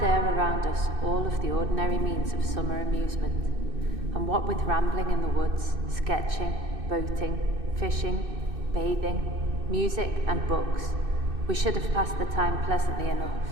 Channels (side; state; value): left; late; 2.6 ms